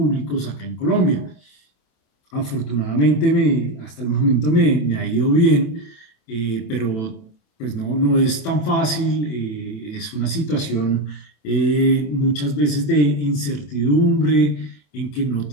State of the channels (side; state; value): right; late; 27 ms